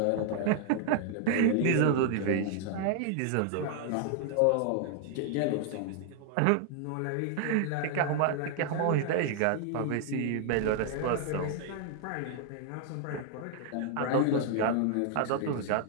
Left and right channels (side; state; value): both; different; correlation 0.00